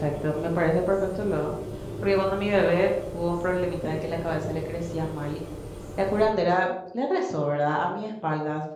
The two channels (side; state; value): both; identical; correlation 1.00